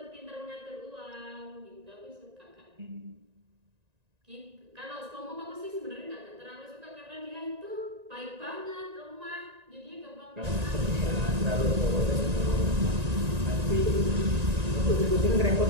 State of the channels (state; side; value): late; left; 1.9 ms